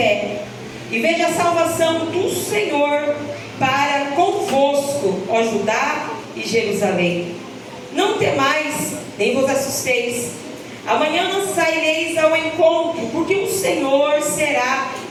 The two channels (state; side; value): identical; both; correlation 1.00